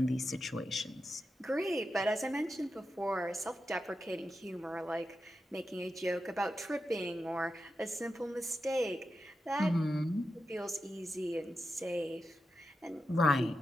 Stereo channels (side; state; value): both; normal; correlation 0.89